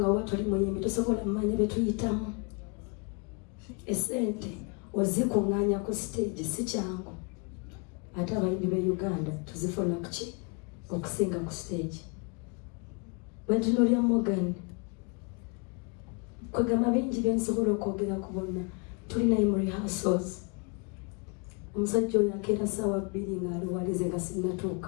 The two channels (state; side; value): quieter; right; 33.4 dB